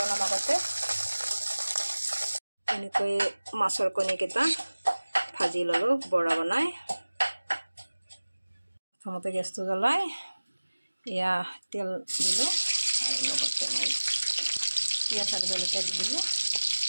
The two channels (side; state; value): both; inverted; correlation -1.00